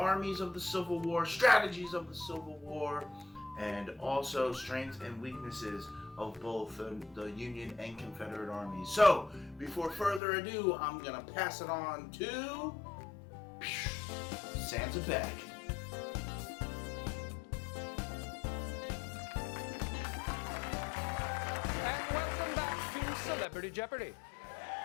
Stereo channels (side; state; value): right; drops out; at 10.2 s